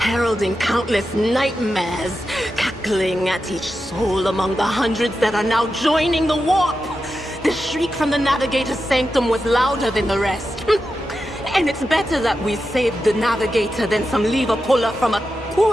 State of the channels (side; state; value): both; normal; correlation 0.90